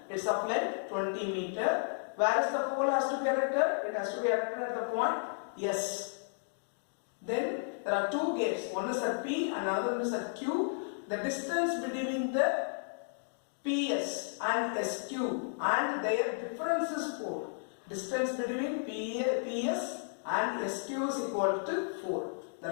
It's of length 20 meter. Where is the pole has to be erected? It has to be erected at the point S. Then there are two gates. One is at P and another one is at Q. The distance between the PS and SQ and their difference is 4. Distance between PS and SQ is equal to 4.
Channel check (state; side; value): silent; right; digital silence